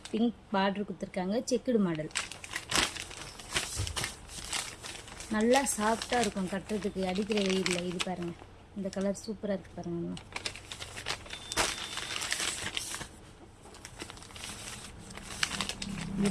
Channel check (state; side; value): identical; both; correlation 1.00